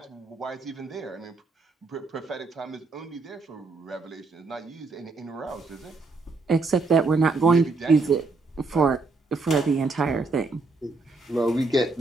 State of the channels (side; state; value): left; quieter; 3.8 dB